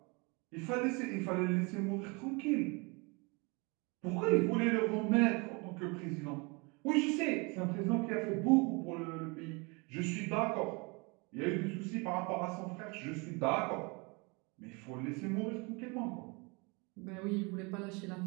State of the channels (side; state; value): left; quieter; 29.3 dB